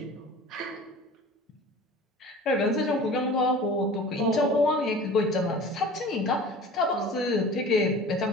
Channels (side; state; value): both; normal; correlation 0.41